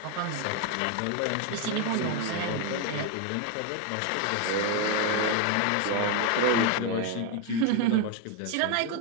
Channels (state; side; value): different; both; correlation 0.01